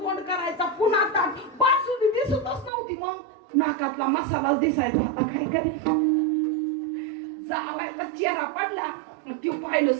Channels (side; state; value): left; drops out; at 2.7 s